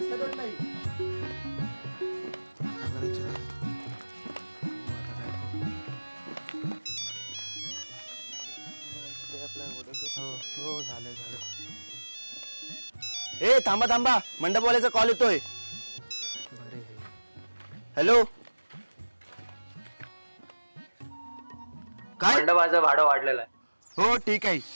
नाही. हो झालं झालं. ए थांबा थांबा, मंडपवाल्याचा कॉल येतोय. बरे. हॅलो. काय? मंडपाचं भाडं वाढलेलं आहे. हो ठीक आहे,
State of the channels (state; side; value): inverted; both; correlation -1.00